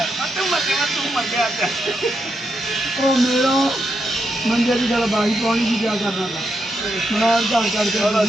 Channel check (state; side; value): normal; both; correlation 0.82